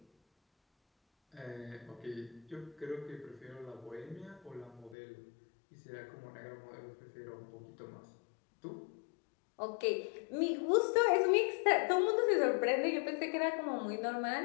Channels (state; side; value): drops out; right; at 5.0 s